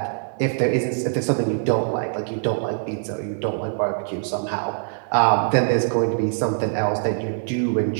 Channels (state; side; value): silent; left; 63 dB below the other